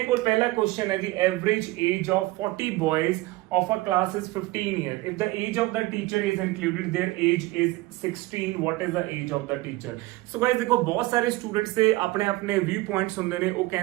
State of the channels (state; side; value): quieter; left; 19.8 dB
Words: ਕੋਲ ਪਹਿਲਾ ਕੁਐਸਚਨ ਹੈ ਜੀ average age of 40 ਬॉयज of a class is 15 years. If the age of the teacher is included, their age is 16. What is the age of the teacher? So guys देखो बहुत सारे students से अपने अपने व्यू पॉइंट्स ਹੁੰਦੇ ਨੇ। ਉਹ